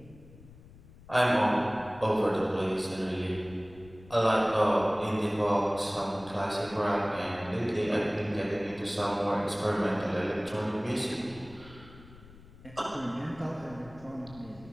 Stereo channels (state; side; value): noise; left; rumble, 21 dB below the sound